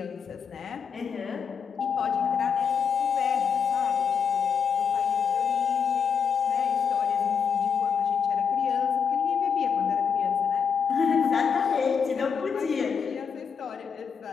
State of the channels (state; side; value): quieter; right; 6.7 dB